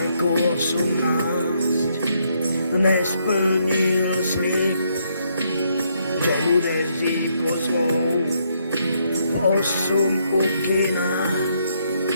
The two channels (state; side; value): inverted; both; correlation -0.74